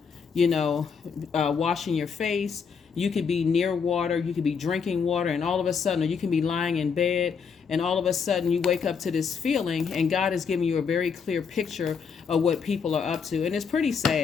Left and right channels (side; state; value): right; quieter; 6.1 dB